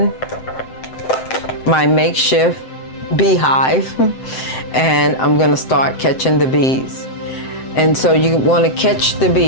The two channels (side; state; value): right; late; 7.8 ms